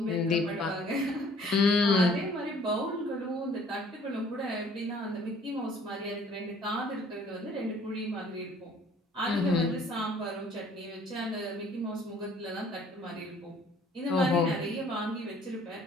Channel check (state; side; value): normal; both; correlation 0.56